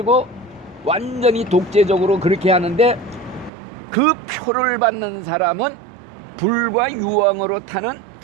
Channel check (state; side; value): drops out; left; at 3.5 s